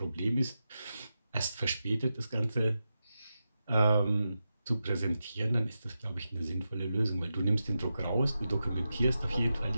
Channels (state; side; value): inverted; both; correlation -0.90